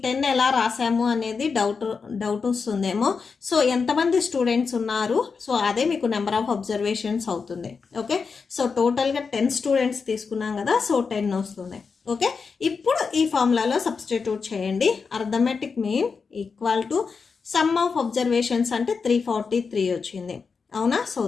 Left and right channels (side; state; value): right; quieter; 5.2 dB